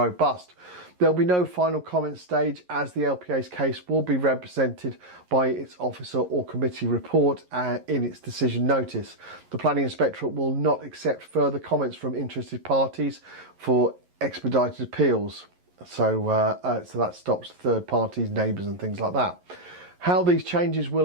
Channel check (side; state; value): left; late; 11 ms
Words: There'll be no final comment stage as the LPA's case will be represented by its officer or committee report in its decision notice. The Planning Inspectorate will not accept further comments from interested parties for expedited appeals. So that stops third parties, neighbours and things like that. How these changes will